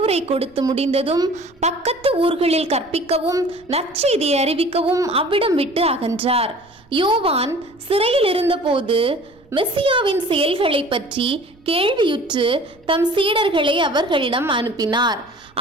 கொடுத்து முடிந்ததும் பக்கத்து ஊர்களில் கற்பிக்கவும் நற்செய்தியை அறிவிக்கவும் அவ்விடம் விட்டு அகன்றார். யோவான் சிறையில் இருந்தபோது மெசியாவின் செயல்களை பற்றி கேள்வியுற்று தம் சீடர்களை அவர்களிடம் அனுப்பினார்.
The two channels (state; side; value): noise; right; rumble, 29 dB below the sound